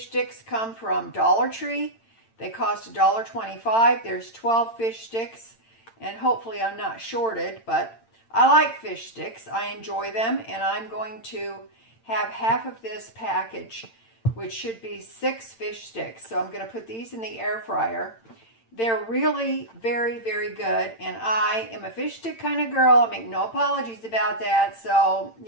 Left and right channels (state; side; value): late; right; 8.9 ms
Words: sticks come from Dollar Tree. They cost $1.25. There's 12 fish sticks. And hopefully I'm not shorted, but I like fish sticks. I enjoy them, and I'm going to have half of this package, which should be 6 fish sticks. So I'm going to put these in the air fryer. They're really very, very good, and I am a fish stick kind of girl. I make no apologies about that, so,